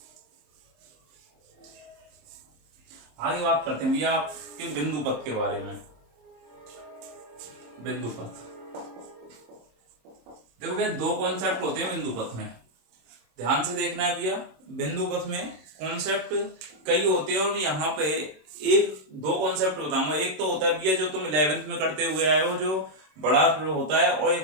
आगे बात करते हैं भैया आपके बिंदु पथ के बारे में। बिंदु पथ देखो भैया दो कॉन्सेप्ट होते हैं बिंदु पथ में, ध्यान से देखना है भैया। बिंदु पथ में कॉन्सेप्ट कई होते हैं, और यहाँ पे दो कॉन्सेप्ट बताऊंगा। एक तो होता है भैया जो तुम 11th में करते हुए आए हो, जो बड़ा होता है, और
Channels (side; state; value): left; late; 26 ms